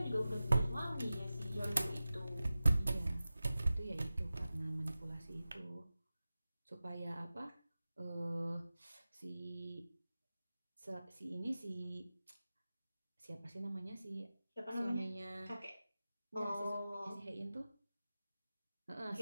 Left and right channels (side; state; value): both; inverted; correlation -0.95